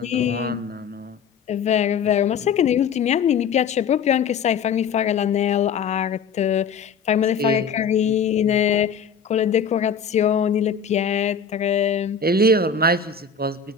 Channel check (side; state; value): right; quieter; 6.0 dB